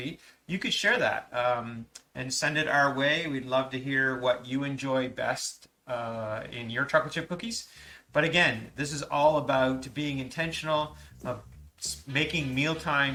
you could share that and send it our way. We'd love to hear what you enjoy best in your chocolate chip cookies. But again, this is all about being intentional, of making meal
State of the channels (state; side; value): identical; both; correlation 1.00